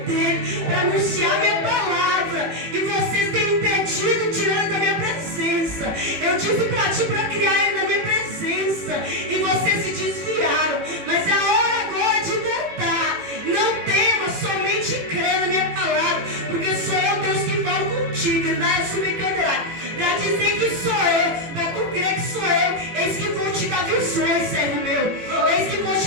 dele, para anunciar minha palavra, e vocês têm impedido, tirando da minha presença. Eu disse para ti para criar ele na minha presença, e vocês se desviaram, mas é a hora agora de voltar. Não tema, somente crê na minha palavra, porque sou eu, Deus, que falo contigo, Endaia Subcandará, para dizer que sou eu, para tu crer que sou eu. Eis que vou te dar visões, servo meu, eis que vou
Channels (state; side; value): late; left; 18 ms